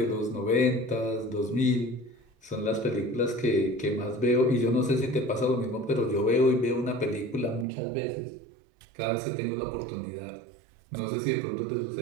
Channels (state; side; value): drops out; left; at 7.7 s